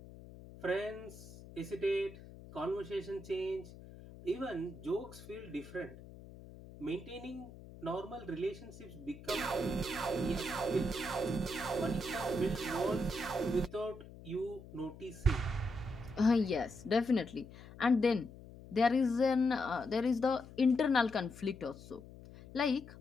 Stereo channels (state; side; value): noise; left; hum, 17 dB below the sound